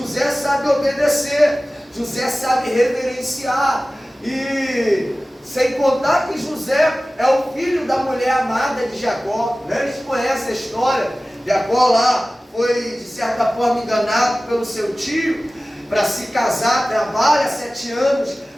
sabe obedecer, José sabe reverenciar, e sem contar que José é o filho da mulher amada de Jacó, né? Eles conhecem a história. Jacó lá foi de certa forma enganado pelo seu tio para se casar, trabalha 7 anos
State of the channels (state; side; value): normal; both; correlation 0.97